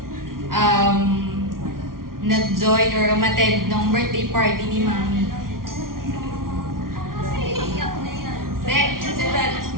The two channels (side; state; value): left; late; 0.92 ms